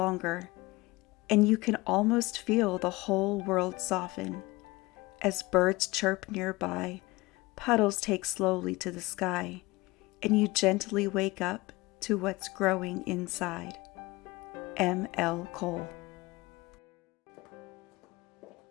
and you can almost feel the whole world soften. As birds chirp nearby, puddles take slowly to the sky, and you gently wake up to what's growing inside. M. L. Cole.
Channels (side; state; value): right; quieter; 21.8 dB